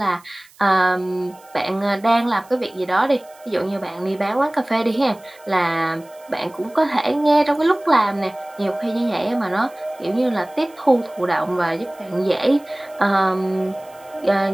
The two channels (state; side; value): noise; right; hiss, 27 dB below the sound